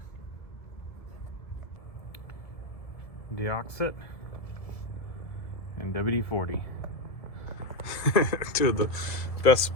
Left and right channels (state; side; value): late; right; 1.7 ms